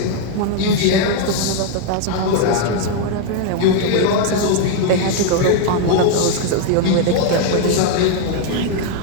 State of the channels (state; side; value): different; both; correlation 0.00